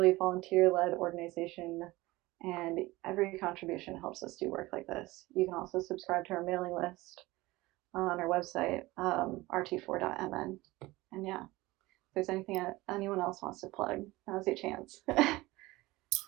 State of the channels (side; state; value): left; quieter; 19.9 dB